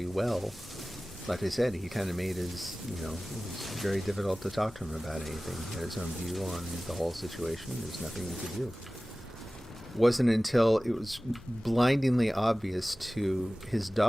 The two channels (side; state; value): left; noise; hum, 25 dB below the sound